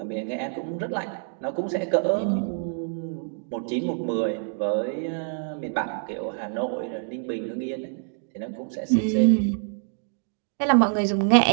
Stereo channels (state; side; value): silent; left; digital silence